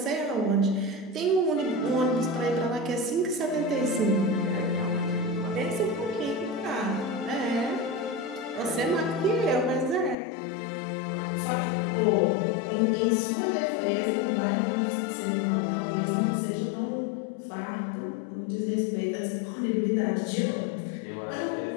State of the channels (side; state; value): right; drops out; at 10.2 s